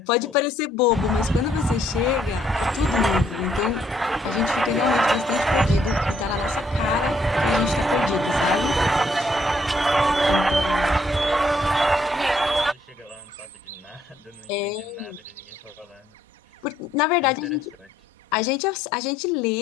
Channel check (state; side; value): normal; both; correlation 0.69